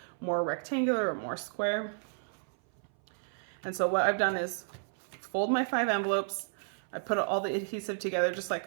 more rectangular or more square. And so what I've done is fold my 5 envelopes. I put all the adhesive together just like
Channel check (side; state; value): left; silent; 56 dB below the other